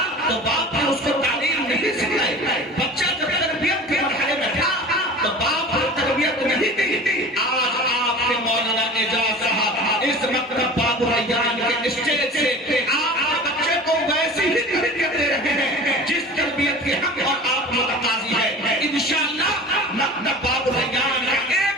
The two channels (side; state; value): both; normal; correlation 0.38